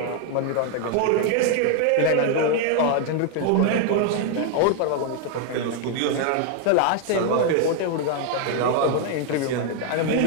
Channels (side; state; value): both; different; correlation 0.00